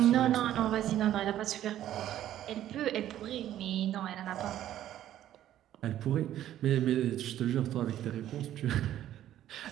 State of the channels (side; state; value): left; quieter; 12.2 dB